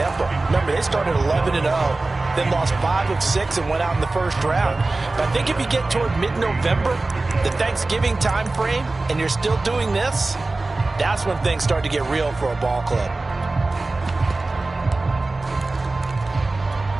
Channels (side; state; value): left; quieter; 3.2 dB